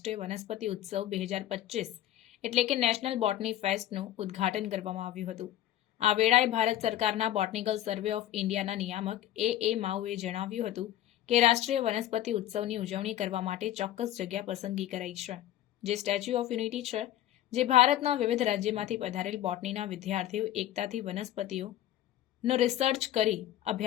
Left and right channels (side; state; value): right; quieter; 12.8 dB